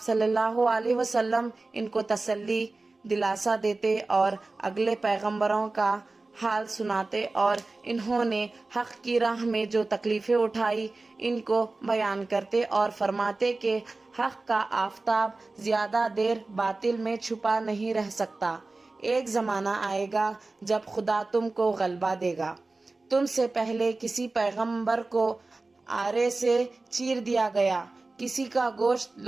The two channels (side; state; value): left; quieter; 3.4 dB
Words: صلی اللہ علیہ وسلم ان کو تسلی دلاسا دیتے اور اگلے پیغمبروں کا حال سناتے اور انہوں نے حق کی راہ میں جو تکلیفیں اٹھائی ان کو بیان کرتے اور فرماتے کہ حق کا آفتاب زیادہ دیر باطل میں چھپا نہیں رہ سکتا۔ ایک زمانہ آئے گا جب خدا تم کو غلبہ دے گا۔ تم سے پہلے کسی پیغمبر کو آرے سے چیر دیا گیا، کسی کا گوشت